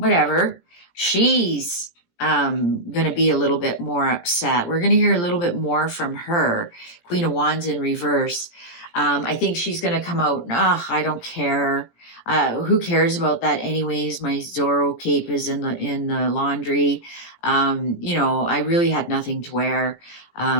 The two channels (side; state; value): right; late; 17 ms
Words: She's going to be a little bit more upset. We're going to hear a little bit more from her. Queen of Wands in reverse. I think she's going to come out, I don't care. Who cares about that anyways? My Zorro cape is in the laundry. I really had nothing to wear.